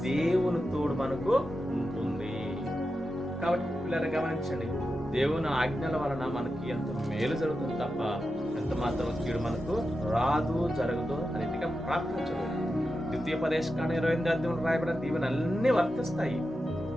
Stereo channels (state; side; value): normal; both; correlation 0.90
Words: దేవుని తోడు మనకు ఉంటుంది. కాబట్టి పిల్లలు గమనించండి, దేవుని ఆజ్ఞల వలన మనకి ఎంత మేలు జరుగుతుంది తప్ప ఎంత మాత్రం కీడు మనకు రాదు, జరగదు, అన్నిటిగా ప్రార్థించదు. ద్వితీయోపదేశకాండ 28వ అధ్యాయంలో రాయబడిన దీవెన అన్నీ వర్తిస్తాయి.